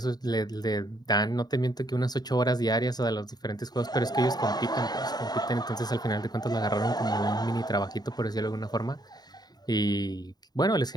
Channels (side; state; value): right; late; 0.20 ms